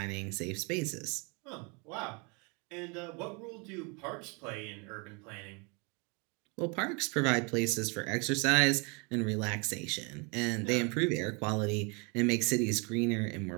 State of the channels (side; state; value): left; quieter; 31.7 dB